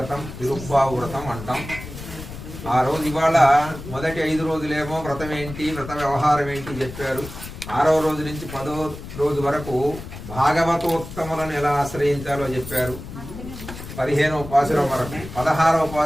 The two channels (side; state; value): left; noise; rumble, 12 dB below the sound